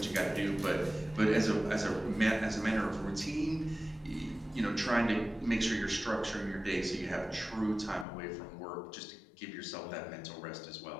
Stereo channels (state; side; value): drops out; right; at 8.1 s